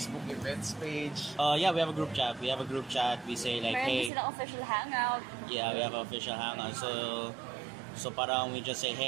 events page? Yeah, we have a group chat. We say like, Meron hey. din silang official hangout. Yeah, we have an official hangout. So parang we just say,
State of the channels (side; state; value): left; drops out; at 4.1 s